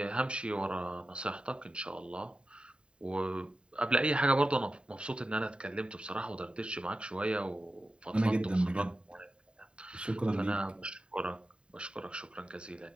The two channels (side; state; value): left; late; 0.052 ms